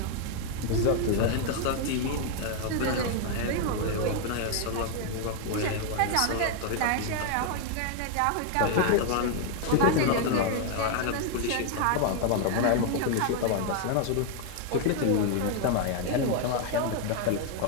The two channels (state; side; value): different; both; correlation 0.00